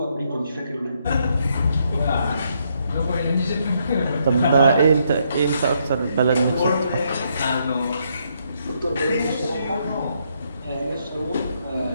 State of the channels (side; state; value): both; inverted; correlation -0.75